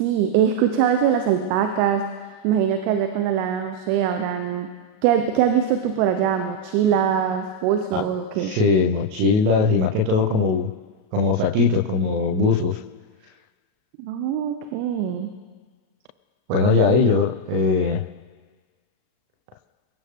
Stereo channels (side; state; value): left; late; 37 ms